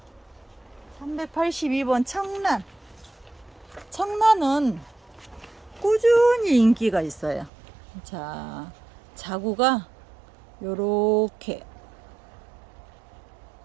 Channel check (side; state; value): left; drops out; at 7.5 s